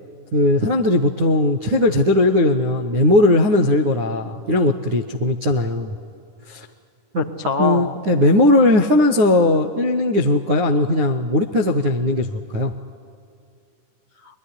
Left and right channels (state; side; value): late; left; 10 ms